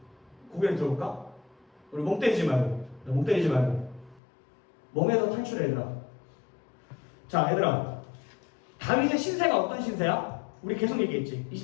고개를 들어볼까? 우리 멍 때리지 말고 멍에서 탈출해. 얘들아, 자, 얘들아, 다윗의 신세가 어떤 신세야? 우리 계속 얘기했지.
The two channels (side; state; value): right; drops out; at 4.2 s